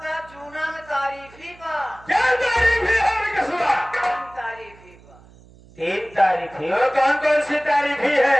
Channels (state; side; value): noise; right; hum, 24 dB below the sound